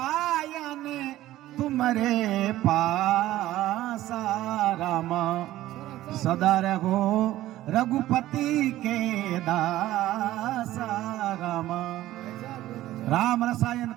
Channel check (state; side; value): quieter; left; 14.9 dB